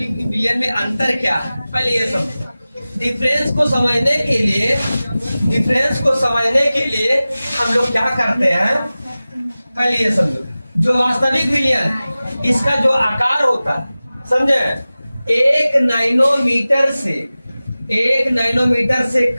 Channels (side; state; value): both; inverted; correlation -0.97